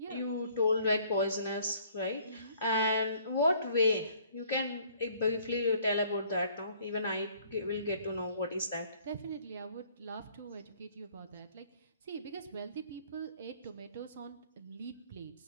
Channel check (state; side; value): inverted; both; correlation -0.59